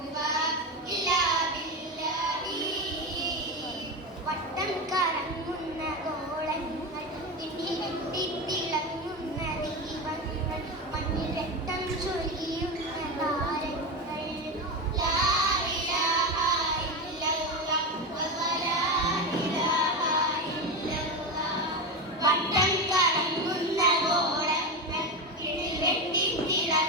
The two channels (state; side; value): normal; both; correlation 0.18